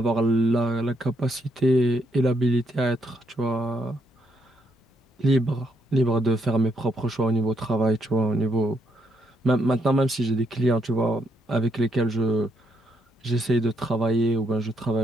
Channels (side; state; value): both; normal; correlation 0.75